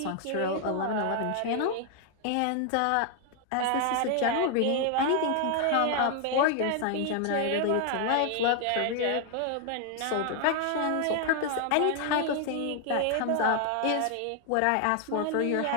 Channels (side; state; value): both; different; correlation 0.00